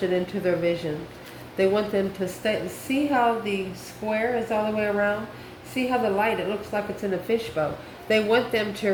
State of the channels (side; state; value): both; identical; correlation 1.00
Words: into their vision. They want them to stay. See how the square is all the way around? See how the light, it looks like it's in a fishbowl. They want them to